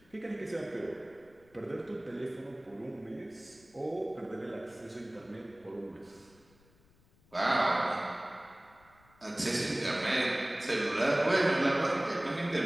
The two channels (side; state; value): left; noise; rumble, 30 dB below the sound